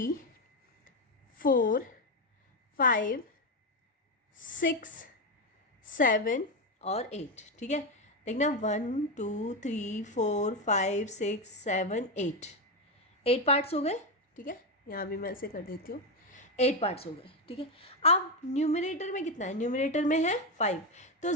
4 5 6 7 और 8, ठीक है। देखना 1 2 3 4 5 6 7 8, 8 पार्ट्स हो गए, ठीक है। यहाँ भी मैं ऐसे कर देती हूँ, 8 पार्ट्स हो गए, ठीक है। अब न्यूमरेटर में कितना है, न्यूमरेटर में है 5, तो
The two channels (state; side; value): normal; both; correlation 0.09